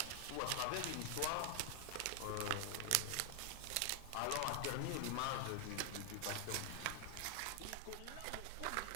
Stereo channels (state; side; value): different; both; correlation 0.00